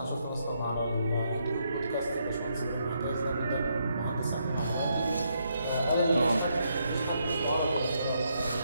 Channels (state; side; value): inverted; both; correlation -0.77